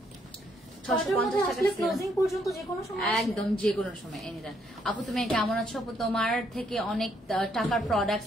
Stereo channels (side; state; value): both; normal; correlation 0.72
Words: 650 টাকা ক্লোজিং পর্যন্ত যে কোনো সময়, একদম যে কোনো সময় এনিটাইম। আপু তুমি কেমন আছো? আপু তোমার থেকে অনেক টাকার